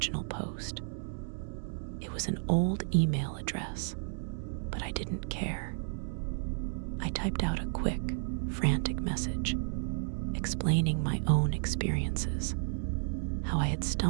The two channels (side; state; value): left; silent; digital silence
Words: post. It was an old email address, but I didn't care. I typed out a quick, frantic message, explaining my own experiences, how I had